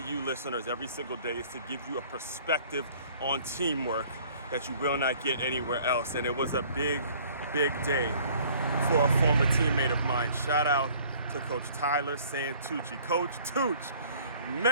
listeners every single day is to give you a perspective on teamwork that you will not get anywhere else. And it was a big day for a former teammate of mine. Shout out to Coach Tyler Santucci. Coach Tucc,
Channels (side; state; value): both; inverted; correlation -0.55